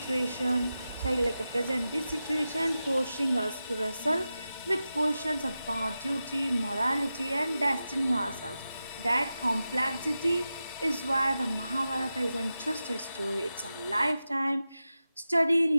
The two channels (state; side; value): inverted; both; correlation -0.92